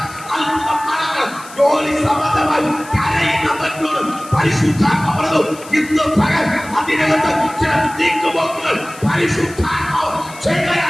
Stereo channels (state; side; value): noise; left; hiss, 18 dB below the sound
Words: അത്ഭുതം നടക്കണം. ജോലി സംബന്ധമായി കരയുന്നവരോട് പരിശുദ്ധാത്മ പറഞ്ഞു, ഇന്ന് പകൽ അതിനകത്ത് ചില നീക്കുപോക്കുകൾ പരിശുദ്ധാത്മാവ്